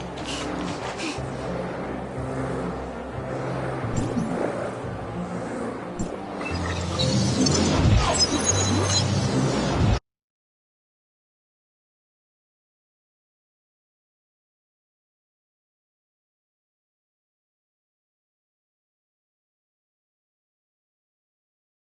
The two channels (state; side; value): identical; both; correlation 1.00